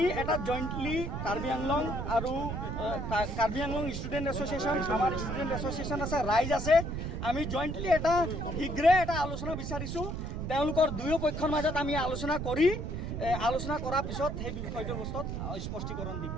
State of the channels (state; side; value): noise; right; rumble, 4 dB below the sound